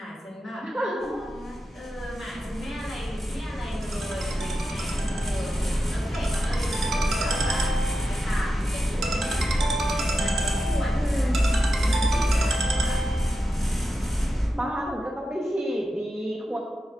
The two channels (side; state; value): both; normal; correlation 0.90